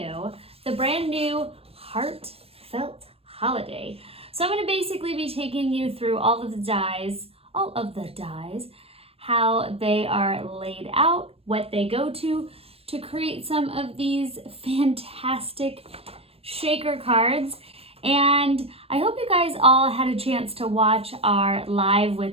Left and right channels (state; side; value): late; left; 0.28 ms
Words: the brand new Heartfelt Holiday. So I'm going to basically be taking you through all of the dies, how they are laid out, what they go to create some of these fantastic shaker cards. And I hope you guys all had a chance to watch our live